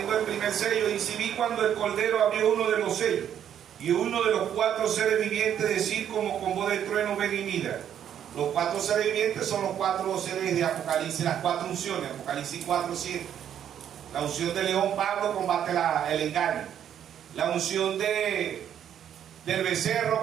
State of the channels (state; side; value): quieter; left; 9.6 dB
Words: el primer sello, dice, vi cuando el Cordero abrió uno de los sellos, y uno de los 4 seres vivientes decir como con voz de trueno, ven y mira. Los 4 seres vivientes son los 4 seres de Apocalipsis, las 4 unciones. Apocalipsis 4:7. La unción de León, Pablo, combate el engaño. La unción del